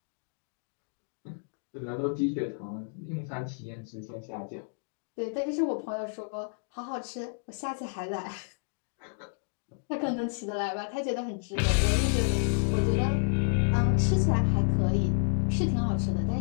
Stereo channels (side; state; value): right; silent; digital silence